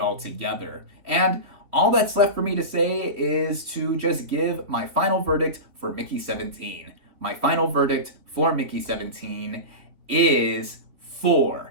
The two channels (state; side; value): late; left; 3.4 ms